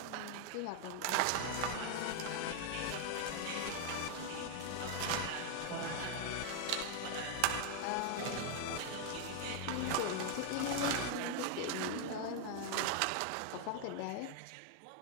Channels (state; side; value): different; both; correlation 0.01